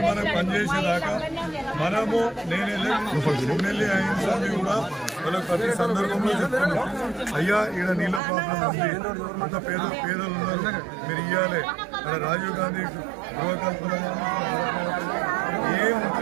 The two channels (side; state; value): left; drops out; at 8.2 s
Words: మనం పనిచేసేదాకా మనము నేను ఎమ్మెల్యే అయిన సార్లు కూడా వాళ్ళకి ప్రతి సందర్భంలో చెప్తున్నాం, అయ్యా ఈడ నీళ్ళ ప్రాబ్లం ఉంది, అంత పేదలు ఉన్నారు, మీరు ఇవ్వాలి. అక్కడ రాజీవ్ గాంధీ గృహకల్పన ఏం